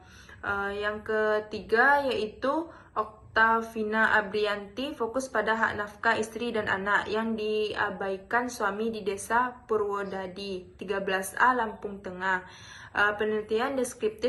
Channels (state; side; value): identical; both; correlation 1.00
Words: Yang ketiga yaitu Oktavina Abrianti fokus pada hak nafkah istri dan anak yang diabaikan suami di Desa Purwodadi, 13A, Lampung Tengah. Penelitian